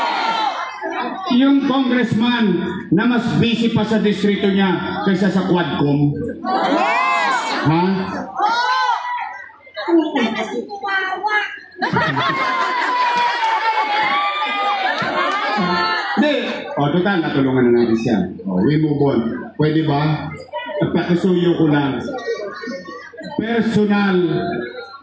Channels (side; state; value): both; identical; correlation 1.00